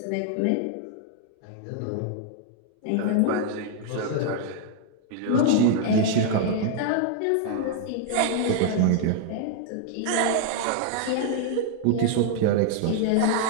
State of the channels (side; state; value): both; different; correlation -0.01